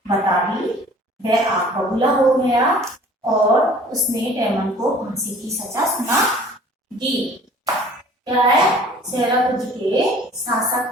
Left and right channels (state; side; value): normal; both; correlation 0.50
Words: बता दी। वह आग बबूला हो गया और उसने डेमन को फांसी की सजा सुना दी। क्या है? सेराकुंज के शासक